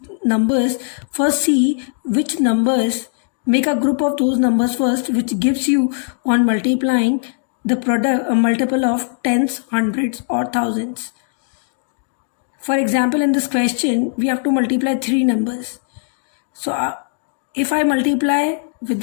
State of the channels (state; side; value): silent; right; digital silence